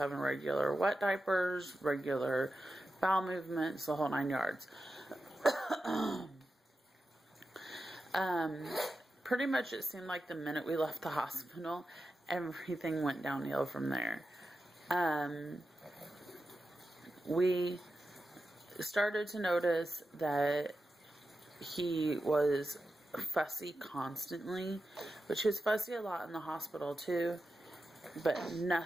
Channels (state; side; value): normal; both; correlation 0.91